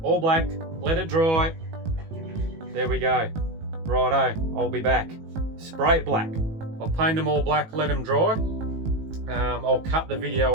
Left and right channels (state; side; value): late; left; 18 ms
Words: all black, let it dry. There we go. Righto, I'll be back. Spray it black. I'll paint them all black, let them dry. I'll cut the